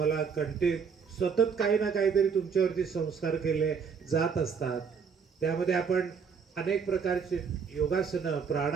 सतत काही ना काहीतरी तुमच्यावरती संस्कार केले जात असतात. त्यामध्ये आपण अनेक प्रकारचे योगासनं,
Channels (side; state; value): left; quieter; 6.1 dB